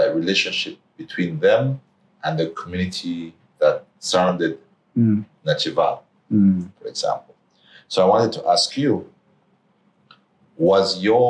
relationship between them and the community that surrounded Nachiva, for example. So I wanted to ask you, was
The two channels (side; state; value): both; identical; correlation 1.00